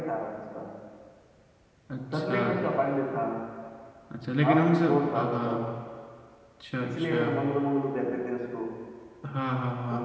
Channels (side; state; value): both; identical; correlation 1.00